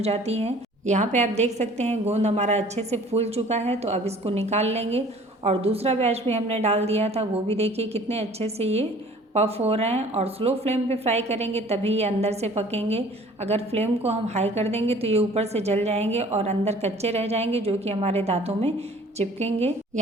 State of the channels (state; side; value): normal; both; correlation 0.51